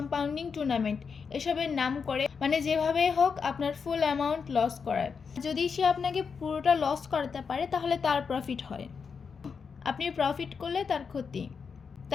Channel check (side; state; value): right; quieter; 5.8 dB